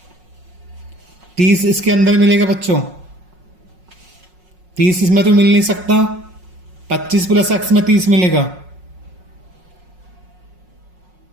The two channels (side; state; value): left; late; 5.5 ms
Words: 30 इसके अंदर मिलेगा बच्चों। 30 इसमें तो मिल नहीं सकता, 25 प्लस एक्स में 30 मिलेगा।